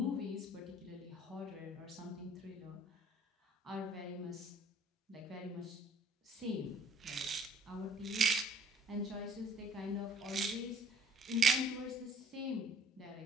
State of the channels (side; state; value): both; normal; correlation 0.57